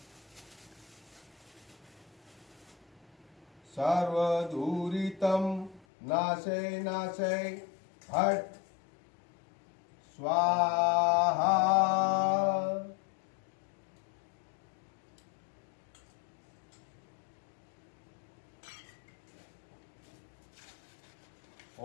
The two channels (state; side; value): drops out; right; at 5.9 s